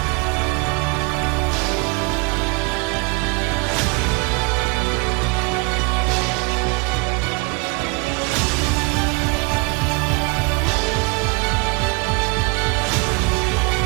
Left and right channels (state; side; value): quieter; left; 29.2 dB